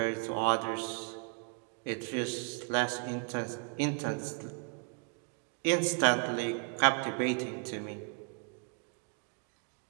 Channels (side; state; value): left; quieter; 39.7 dB